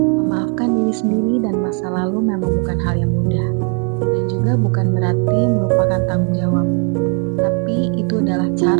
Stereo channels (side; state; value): left; quieter; 39.3 dB